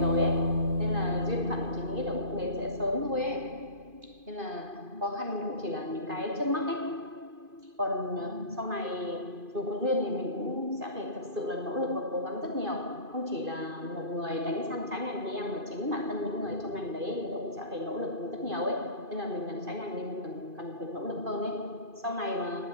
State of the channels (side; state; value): left; late; 2.5 ms